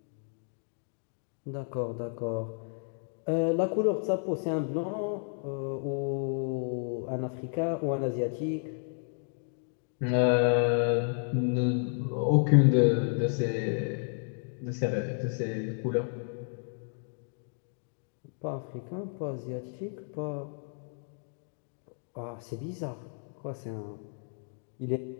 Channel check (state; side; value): silent; right; 56 dB below the other